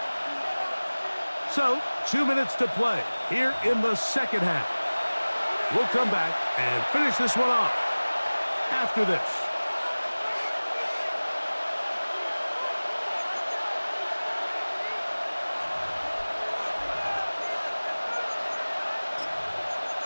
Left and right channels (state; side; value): inverted; both; correlation -1.00